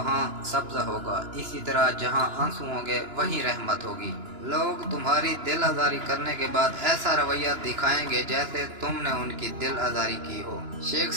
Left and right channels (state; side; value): late; left; 2.9 ms